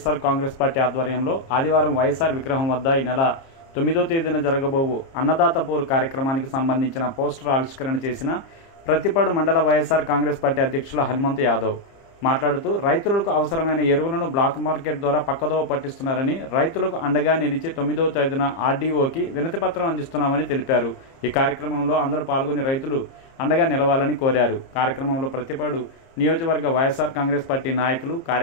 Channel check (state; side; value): late; right; 30 ms